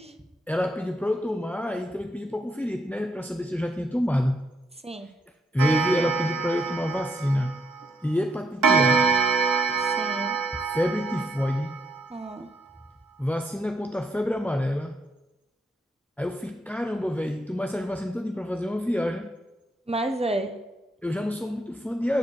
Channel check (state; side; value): normal; both; correlation 0.76